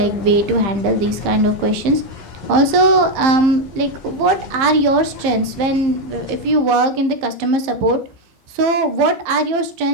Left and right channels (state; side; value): late; left; 15 ms